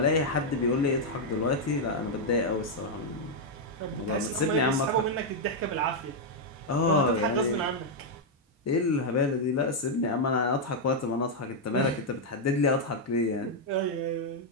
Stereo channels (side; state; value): both; normal; correlation -0.01